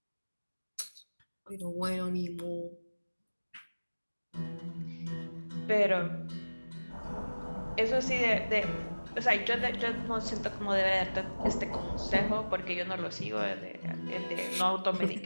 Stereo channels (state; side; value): inverted; both; correlation -1.00